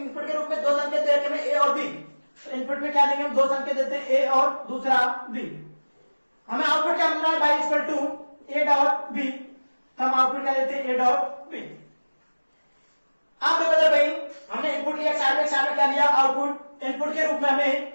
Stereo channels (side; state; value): both; inverted; correlation -1.00